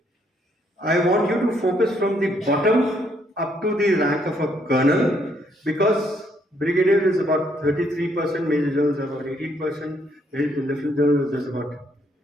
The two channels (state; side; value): normal; both; correlation 0.70